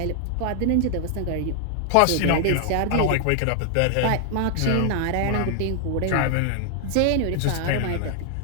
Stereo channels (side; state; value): both; different; correlation 0.00